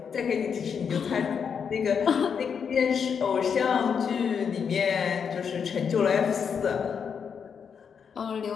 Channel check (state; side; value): quieter; right; 6.8 dB